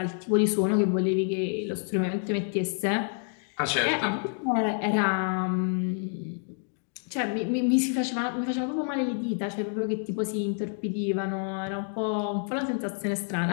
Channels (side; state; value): right; silent; 56 dB below the other